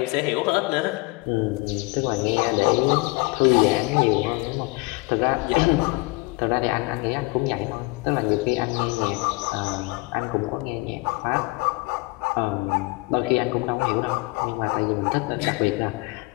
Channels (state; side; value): quieter; right; 25.3 dB